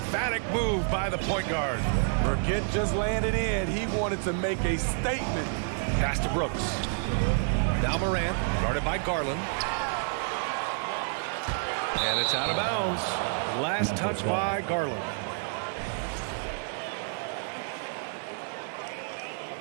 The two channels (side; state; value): left; silent; 57 dB below the other